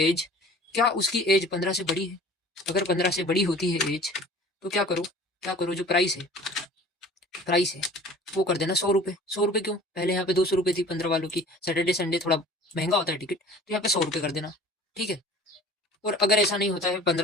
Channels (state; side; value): normal; both; correlation 0.46